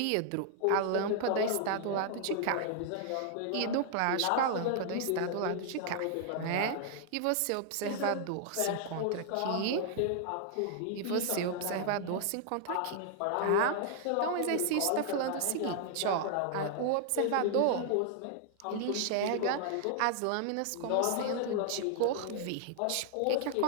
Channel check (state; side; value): different; both; correlation 0.00